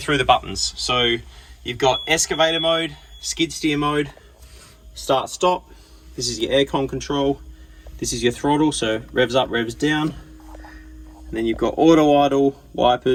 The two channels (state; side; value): identical; both; correlation 1.00